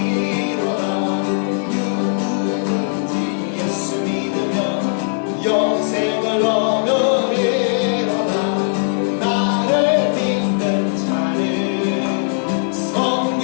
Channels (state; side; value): silent; right; digital silence